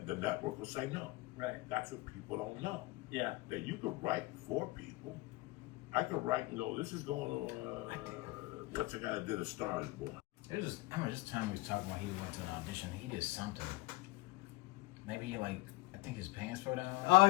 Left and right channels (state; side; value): quieter; right; 21.3 dB